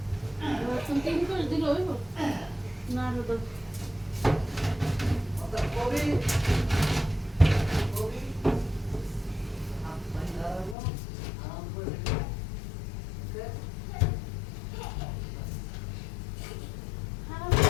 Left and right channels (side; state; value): right; drops out; at 10.8 s